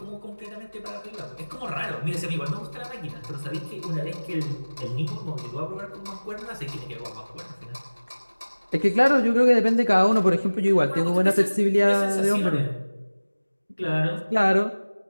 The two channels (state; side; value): inverted; both; correlation -1.00